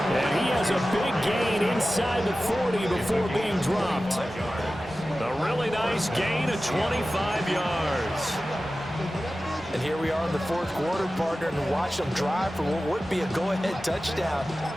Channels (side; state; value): both; normal; correlation 0.95